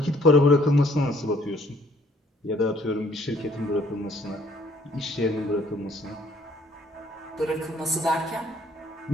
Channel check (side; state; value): both; normal; correlation 0.62